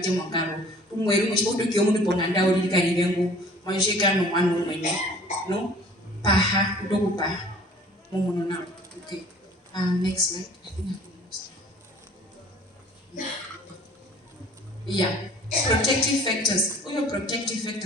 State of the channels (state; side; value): normal; both; correlation 0.50